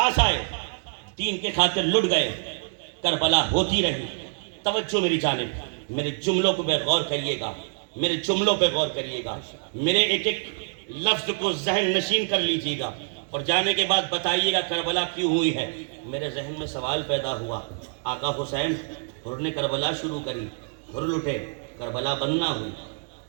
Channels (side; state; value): left; silent; digital silence